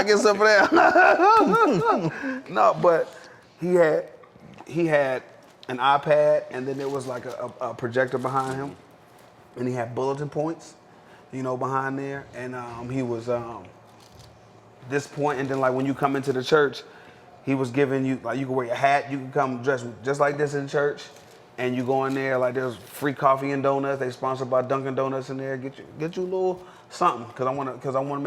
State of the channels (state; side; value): identical; both; correlation 1.00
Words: get some of that? No, but he had an iPad, and then there was like a projector behind him, and he had bulletin points, you know, behind there, and he was this point, and then like when you come into the church, he was giving you like you can wear your hat, you can come dressed just like this in church, and you go in there like there's free coffee and donuts. They sponsored by Dunkin' Donuts in there. Get you a little something because I want to